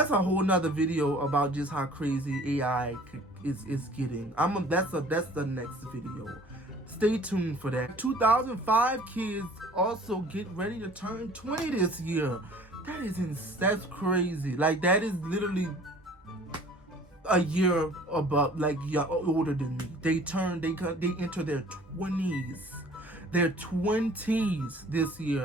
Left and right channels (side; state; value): both; normal; correlation 0.50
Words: a whole nother video about just how crazy AI is getting. That's the next video. Stay tuned for that. 2005 kids also get ready to turn 20 this year. That's crazy. Like, that is literally a year above, older than me. They enter their 20s. Their 20s this